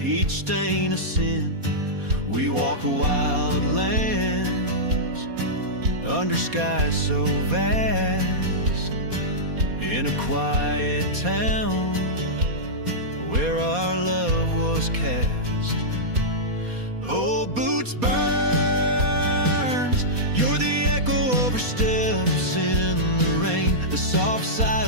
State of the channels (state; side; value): late; left; 4.2 ms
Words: each stain a sin. We walk wild lands under skies so vast, in a quiet town where our love was cast. Oh, boots burns, you're the echo of her steps in the rain, the soft sigh